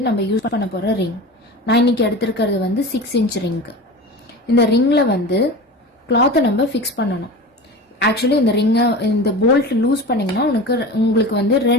நம்ம யூஸ் பண்ண போகிற ரிங். நான் இன்னைக்கு எடுத்திருக்கிறது 6 இன்ச் ரிங்கு. இந்த ரிங்கில் கிளாத்தை நம்ம ஃபிக்ஸ் பண்ணணும். ஆக்சுவலி இந்த ரிங்கை இந்த போல்ட் லூஸ் பண்ணிங்கன்னா உங்களுக்கு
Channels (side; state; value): both; normal; correlation 0.32